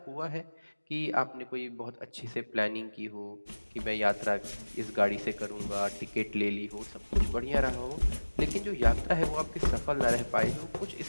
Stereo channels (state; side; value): inverted; both; correlation -1.00